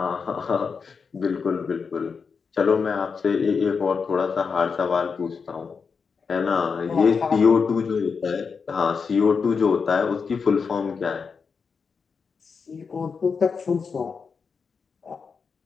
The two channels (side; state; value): right; quieter; 5.5 dB